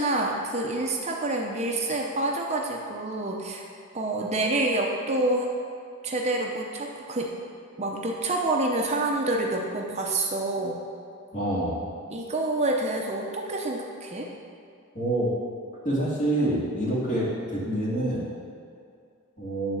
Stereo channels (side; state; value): both; normal; correlation 0.21